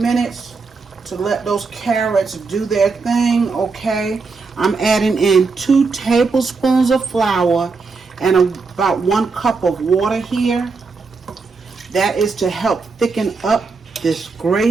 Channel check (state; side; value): quieter; left; 4.4 dB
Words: to let those carrots do their thing. Okay, I'm adding in 2 tablespoons of flour and about 1 cup of water here. That is to help thicken up this